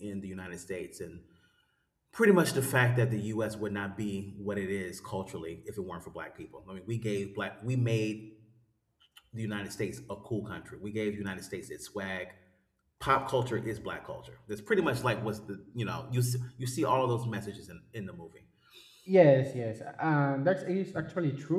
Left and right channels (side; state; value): both; identical; correlation 1.00